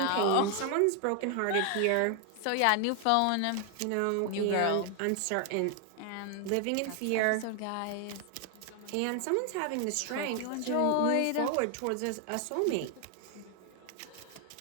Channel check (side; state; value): both; different; correlation 0.00